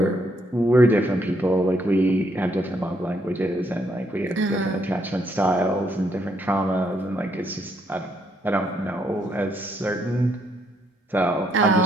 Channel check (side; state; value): both; normal; correlation 0.74